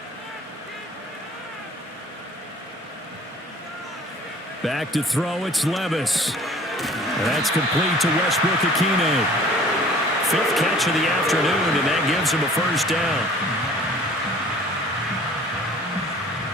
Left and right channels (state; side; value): normal; both; correlation 0.50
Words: Back to throw, it's Levis. And that's complete to Westbrook-Ikhine. 5th catch of the afternoon, and that gives him a first down.